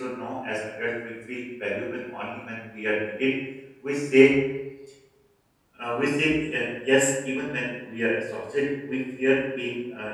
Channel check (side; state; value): both; identical; correlation 1.00